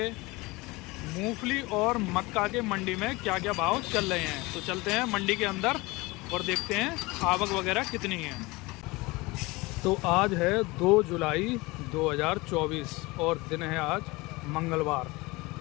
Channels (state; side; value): quieter; right; 22.9 dB